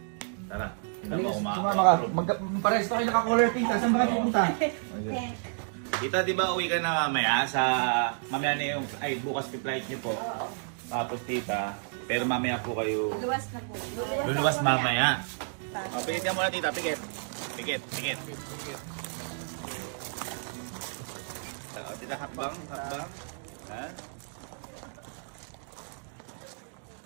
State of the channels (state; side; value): silent; left; digital silence